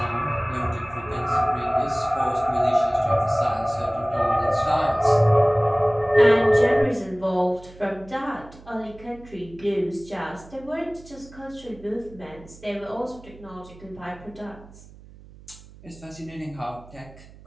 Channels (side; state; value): right; noise; hum, 21 dB below the sound